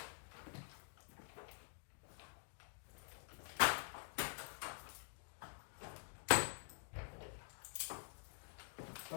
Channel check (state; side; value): silent; right; digital silence